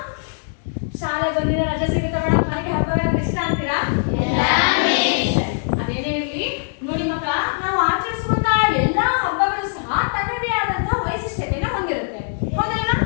ಶಾಲೆಗೆ ಒಂದಿನ ರಜೆ ಸಿಗುತ್ತೆ ಮೇಡಮ್, ನನಗೆ ಹಬ್ಬಗಳಂದ್ರೆ ಇಷ್ಟ ಅಂತೀರಾ? ಅದೇನೇ ಇರಲಿ, ನೋಡಿ ಮಕ್ಕಳ, ನಾವು ಆಚರಿಸುವಂತಹ ಎಲ್ಲಾ ಹಬ್ಬಗಳು ಸಹ ತನ್ನದೇ ಆದಂತಹ ವೈಶಿಷ್ಟ್ಯತೆಯನ್ನು ಹೊಂದಿರುತ್ತೆ, ಹೌದಲ್ವಾ?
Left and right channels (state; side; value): silent; right; digital silence